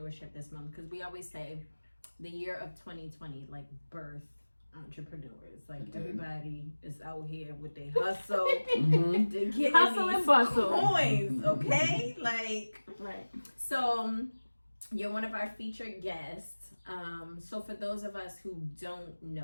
this month because we always say the year of 2020, like birth entrepreneurs. Like everybody is out here with their hustle Mm-hmm. to get Hustle and bustle. coins, okay? Right. So you're one of our featured guests. So for those of us who don't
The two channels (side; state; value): both; inverted; correlation -1.00